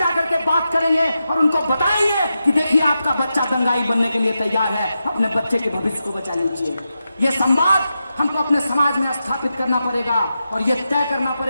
के बात करेंगे और उनको बताएंगे कि देखिए आपका बच्चा दंगाई बनने के लिए तैयार है, अपने बच्चे के भविष्य को बचा लीजिए। ये संवाद हमको अपने समाज में स्थापित करना पड़ेगा और ये तय करना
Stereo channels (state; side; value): inverted; both; correlation -0.89